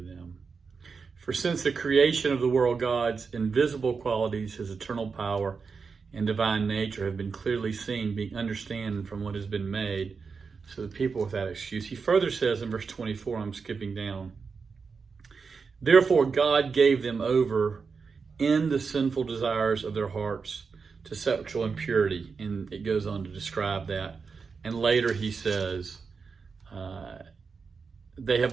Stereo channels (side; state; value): left; quieter; 5.2 dB